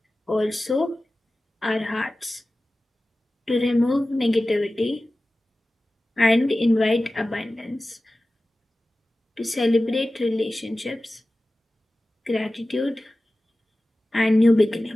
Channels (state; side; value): normal; both; correlation 0.96